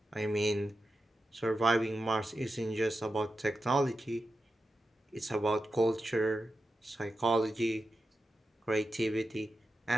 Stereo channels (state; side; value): normal; both; correlation 0.90